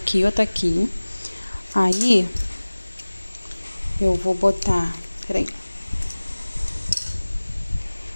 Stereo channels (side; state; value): both; inverted; correlation -1.00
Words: outra aqui. Aí, eu vou botar... Peraí.